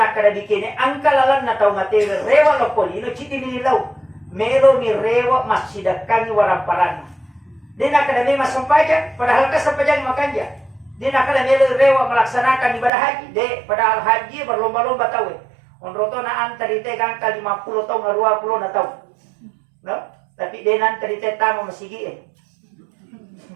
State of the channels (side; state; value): left; drops out; at 12.9 s